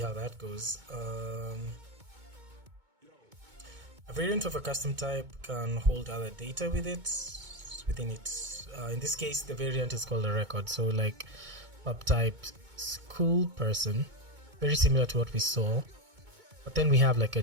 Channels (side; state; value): left; late; 2.2 ms